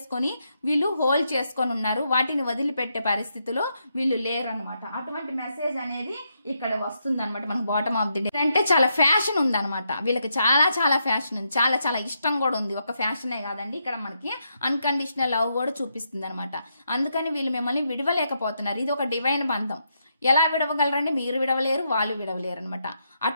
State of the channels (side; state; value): both; inverted; correlation -0.80